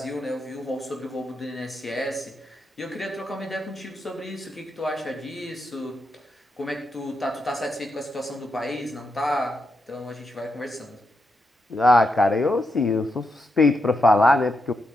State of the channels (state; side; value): normal; both; correlation 0.84